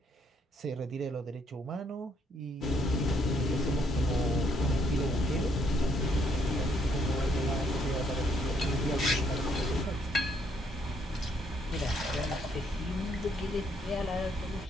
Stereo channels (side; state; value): both; normal; correlation 0.70